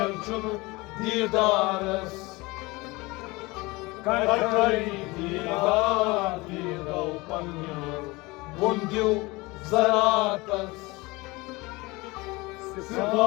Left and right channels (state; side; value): quieter; right; 23.2 dB